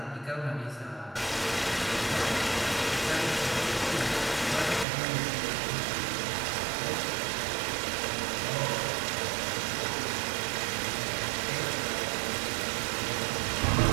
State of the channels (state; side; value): drops out; left; at 4.9 s